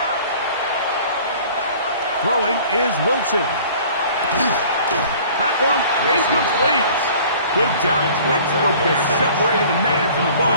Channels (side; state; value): both; inverted; correlation -0.49